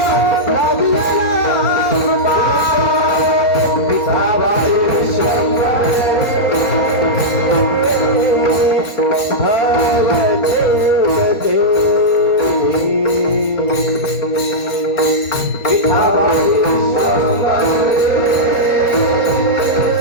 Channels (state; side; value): late; right; 4.1 ms